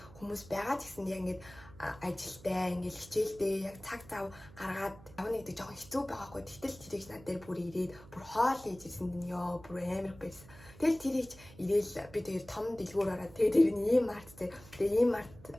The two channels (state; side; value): noise; right; hum, 20 dB below the sound